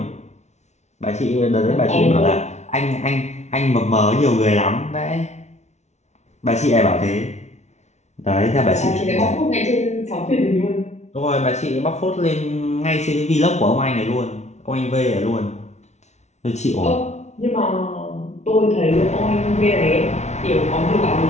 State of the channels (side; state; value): right; late; 0.32 ms